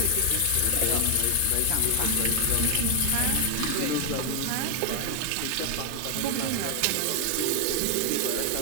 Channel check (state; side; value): different; both; correlation 0.00